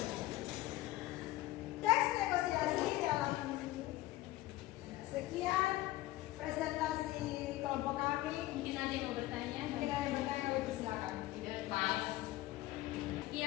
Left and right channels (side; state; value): right; quieter; 17.1 dB